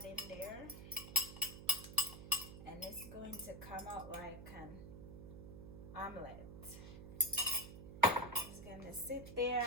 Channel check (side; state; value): right; noise; hum, 12 dB below the sound